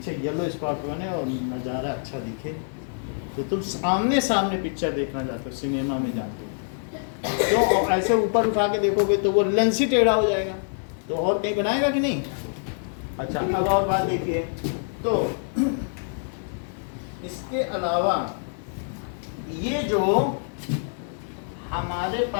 येलो स्पॉट बने और नज़ारा अच्छा दिखे, तो तुम आमने सामने पिक्चर देखना चाहते हो, सिनेमा में जाते हो। तो ऐसे ऊपर उठा के देखोगे तो वो लेंस ही टेढ़ा हो जाएगा, तो और कहीं बनाएगा कि नहीं? अच्छा, अब और बात देखिए, तो इसके अलावा ये जो हमारे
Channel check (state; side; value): silent; right; 61 dB below the other